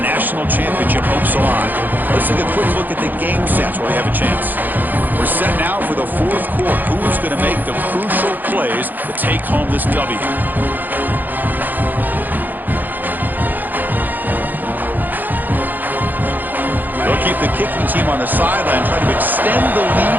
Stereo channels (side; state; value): left; late; 0.087 ms